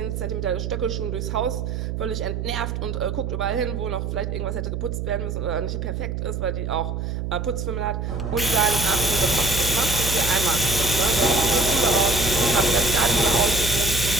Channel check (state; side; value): noise; right; hum, 3 dB below the sound